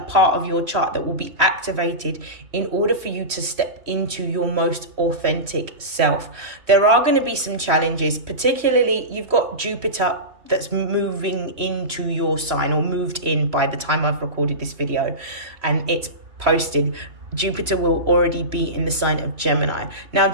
part of your chart that will be activated in order for you to step into your most authentic self. There are going to be some challenges, particularly you've got Jupiter that's moving into your sign, or moved in by the time I've recorded this video and it's posted, Jupiter will already be in the sign of Gemini. Now,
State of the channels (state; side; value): late; left; 3.0 ms